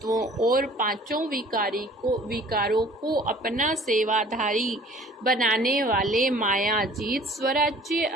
और पांचों विकारों को अपना सेवाधारी बनाने वाले माया जीत स्वराज्य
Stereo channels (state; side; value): normal; both; correlation 0.50